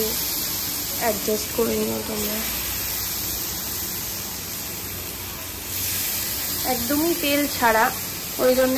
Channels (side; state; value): both; identical; correlation 1.00